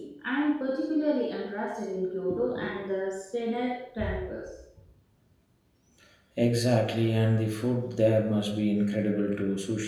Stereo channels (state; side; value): identical; both; correlation 1.00